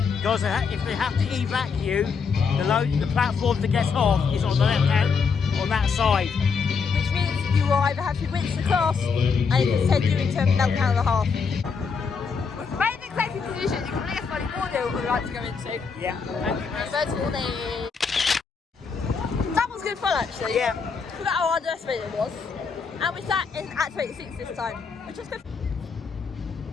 Because if they have to evac you, the platform to get off is on the left hand, on that side. Which means you will either have to rinse the class and it can send you into a meltdown and a half. With the main executive decision, you can leave money audio what we'd like to go into. Yeah. First warning. That was good fun actually. Yeah. Forgot how underestimated it was. And we sat in Activate 6 this time, which was good.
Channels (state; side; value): quieter; right; 5.5 dB